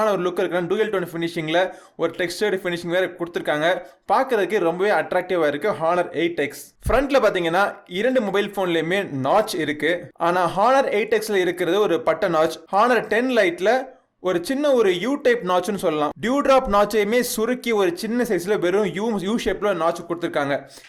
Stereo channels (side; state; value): both; identical; correlation 1.00